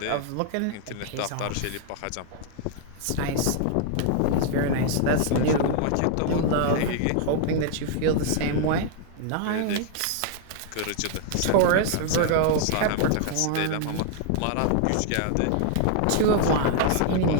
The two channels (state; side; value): different; both; correlation 0.00